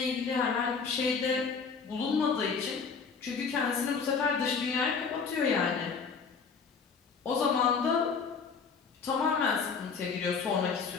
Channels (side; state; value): right; quieter; 5.4 dB